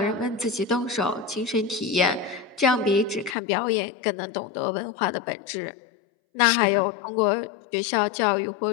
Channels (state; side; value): drops out; right; at 3.4 s